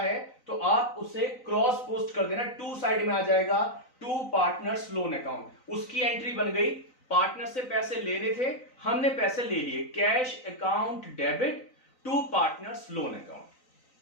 तो आप उसे क्रॉस पोस्ट कर देना, टू साइड में आ जाएगा, टू पार्टनर्स लोन अकाउंट, उसकी एंट्री बन गई, पार्टनर से पैसे लेने थे, हमने पैसे ले लिए, cash account debit to partners loan account.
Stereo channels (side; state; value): right; late; 3.9 ms